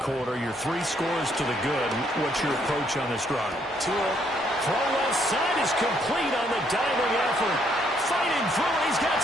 Your 3 scores to the good. What's your approach on this drive? Throw left side is complete on the diving effort. Fighting through it. He's got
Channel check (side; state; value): both; normal; correlation 0.70